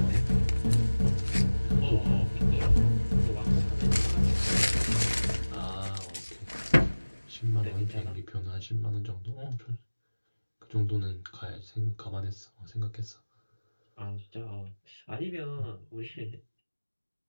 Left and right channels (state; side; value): inverted; both; correlation -1.00